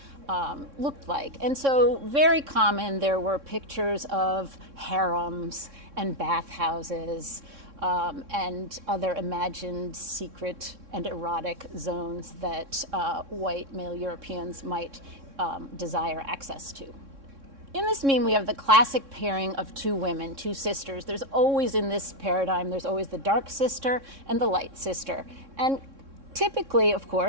looked like. And so very common, there were pictures of harems and bathhouses and other imagined secret and erotic zones that white male Europeans might desire access to. In this meme, we have the classic pairing of two women, two sisters. There's always, in this paradigm, there's always the dark sister and the light sister. And typically, of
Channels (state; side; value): late; left; 3.6 ms